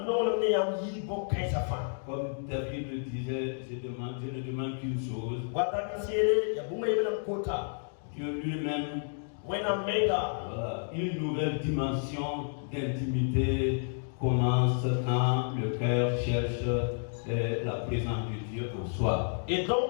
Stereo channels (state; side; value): silent; right; digital silence